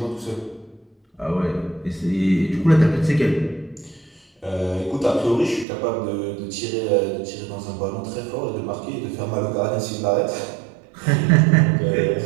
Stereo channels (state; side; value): drops out; left; at 5.7 s